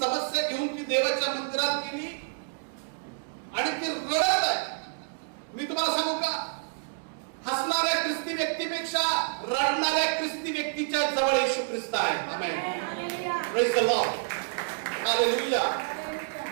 घेऊन ती देवाच्या मंदिरात गेली आणि ती रडत आहे. मी तुम्हाला सांगू का, हसणाऱ्या ख्रिस्ती व्यक्तीपेक्षा रडणाऱ्या ख्रिस्ती व्यक्तीच्या जवळ येशू ख्रिस्त आहे. Amen. Praise the lord. Hallelujah.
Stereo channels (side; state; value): left; silent; digital silence